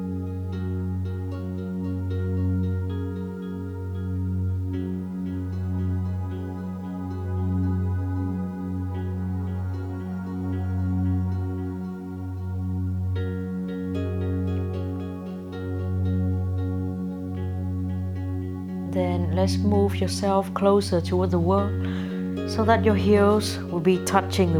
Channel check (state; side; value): identical; both; correlation 1.00